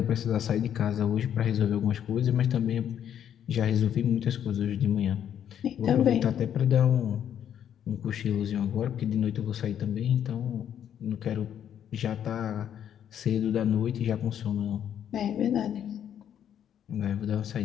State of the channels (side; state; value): right; quieter; 9.6 dB